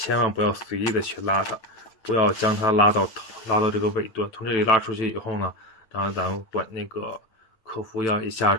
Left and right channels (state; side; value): late; right; 9.0 ms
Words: 万不要随意的去拉它，不要将它拉到这个尾端。从这里拉出去以后呢，当然咱们管那个客服要一下